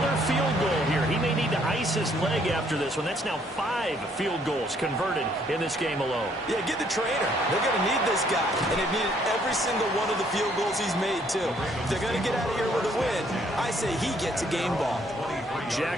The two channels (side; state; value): both; normal; correlation 0.66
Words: field goal here. He may need to ice his leg after this one. That's now 5 field goals converted in this game alone. Yeah, get the trainer. They're going to need this guy. And they've needed every single one of the field goals he's made, too. If they're going to get out of here with a win, I say he gets a game ball.